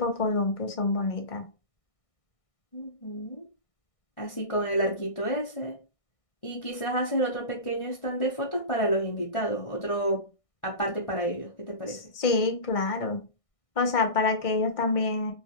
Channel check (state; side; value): late; right; 1.6 ms